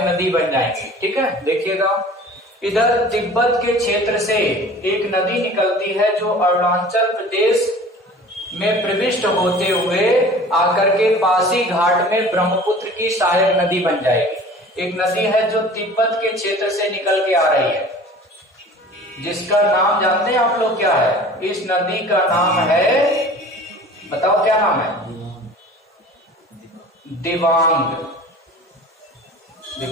नदी बन जाएंगी। ठीक है, देखिएगा इधर तिब्बत के क्षेत्र से एक नदी निकलती है जो अरुणाचल प्रदेश में प्रविष्ट होते हुए आकर के पासी घाट में ब्रह्मपुत्र की सहायक नदी बन जाएगी। एक नदी है जो तिब्बत के क्षेत्र से निकल के आ रही है, जिसका नाम जानते हैं आप लोग क्या है? इस नदी का नाम है, बताओ क्या नाम है? दिबांग।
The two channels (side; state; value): both; normal; correlation 0.44